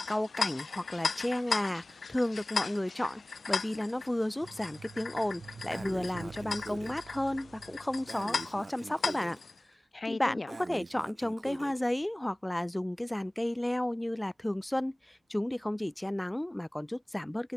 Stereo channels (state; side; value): normal; both; correlation 0.98